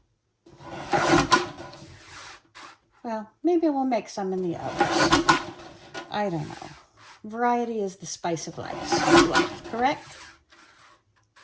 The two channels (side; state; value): both; identical; correlation 1.00